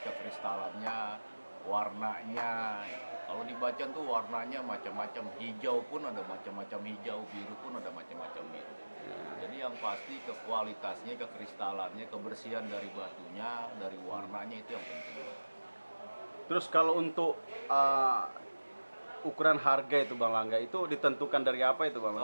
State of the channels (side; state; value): both; inverted; correlation -1.00